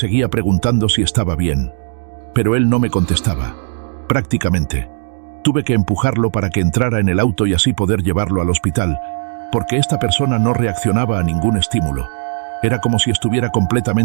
preguntando si estaba bien, pero él no me contestaba. Prácticamente, tuve que empujarlo para que entrara en el auto y así poder llevarlo al hospital, porque esta persona no reaccionaba a ningún estímulo. Era como si estuviera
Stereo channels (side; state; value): left; silent; digital silence